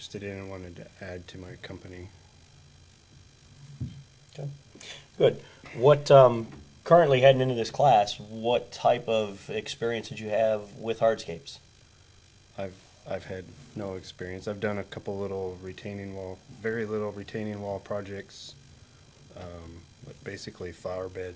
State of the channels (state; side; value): identical; both; correlation 1.00